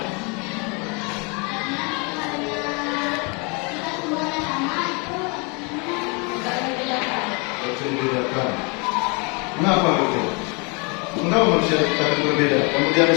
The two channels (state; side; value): quieter; right; 32.1 dB